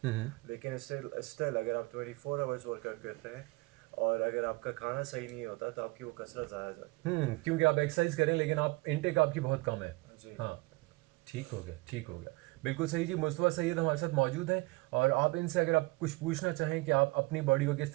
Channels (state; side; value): quieter; left; 23.7 dB